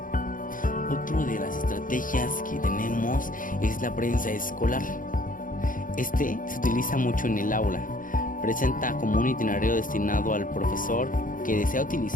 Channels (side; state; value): right; late; 0.39 ms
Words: Otra de las estrategias que tenemos es la prensa escolar. Se utiliza mucho en el aula. Presenta como un itinerario destinado al profesor que desea